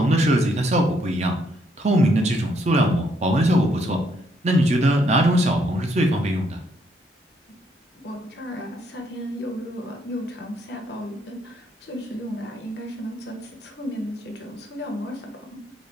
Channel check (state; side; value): normal; both; correlation 0.72